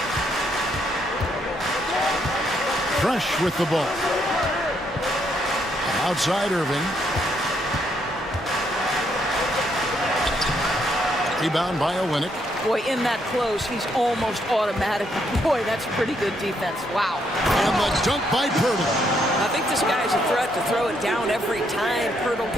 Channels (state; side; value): normal; both; correlation 0.74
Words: Fresh with the ball. Outside Irving. Rebound by Olynyk. Boy, in that close, he's almost automatic. Boy, that's pretty good defense. Wow. And the dunk by Poeltl. I think this guy's a threat to throw it down every time Poeltl